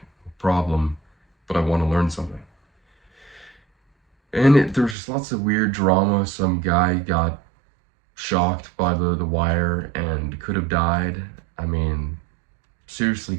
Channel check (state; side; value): drops out; left; at 5.0 s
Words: no problem, but I want to learn something. And there was just lots of weird drama. Some guy got shocked by the wire and could have died. I mean, seriously